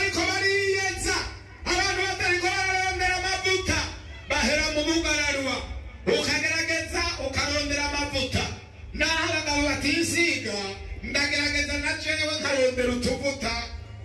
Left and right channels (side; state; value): both; identical; correlation 1.00